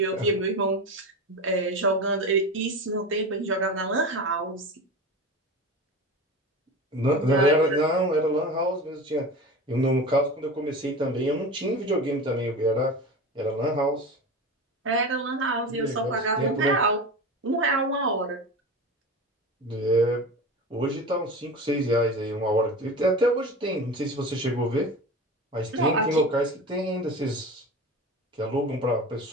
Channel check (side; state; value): both; normal; correlation 0.30